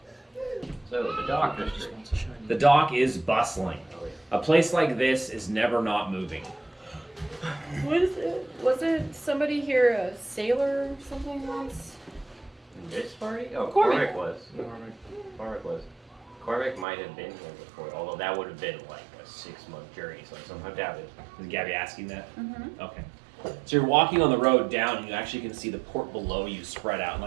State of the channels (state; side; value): drops out; left; at 16.9 s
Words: So, the dock district. The dock is bustling. A place like this is never not moving. Wasn't somebody here a sailor or something once? This party? Oh, Cormac. Cormac was. Cormac was. Cormac might have been here before, although that would have been like a 6-month journey, so somehow doubt it. Is Gabby asking that? Mm-hmm. Okay. So you're walking on the road down, and you actually can see the port below you spread out. And